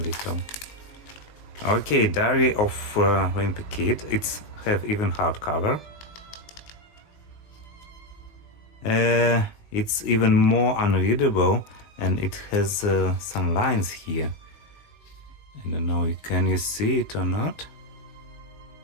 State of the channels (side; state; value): right; late; 19 ms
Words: little. Okay, Diary of Wimpy Kid. It's have even hardcover. It's even more unreadable, and it has some lines here. I don't know. Can you see it or not?